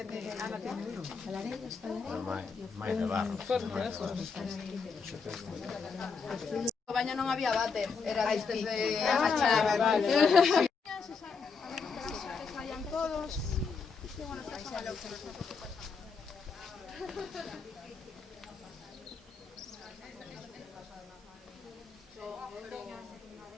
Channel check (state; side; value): quieter; right; 5.2 dB